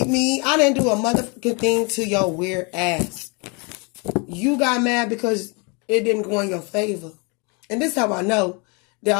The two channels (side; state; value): right; quieter; 31.7 dB